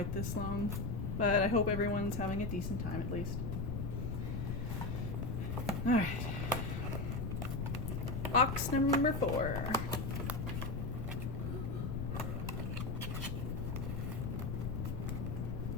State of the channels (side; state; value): left; noise; rumble, 1 dB below the sound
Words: this long. But I hope everyone's having a decent time at least. Alright. Box number 4.